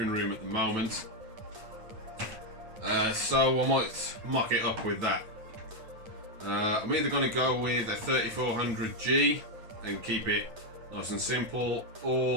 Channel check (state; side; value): late; left; 9.1 ms